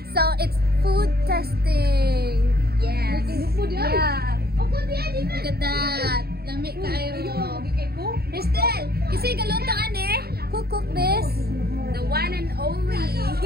So it's food testing. Yes. Yeah. Look at that. Lami kayo. Crystal, kasi galuntaan eh. Who cooked this? The one and only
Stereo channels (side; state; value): left; late; 0.46 ms